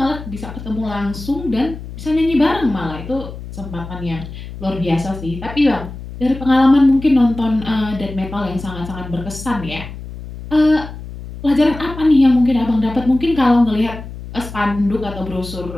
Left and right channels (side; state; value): left; noise; hum, 12 dB below the sound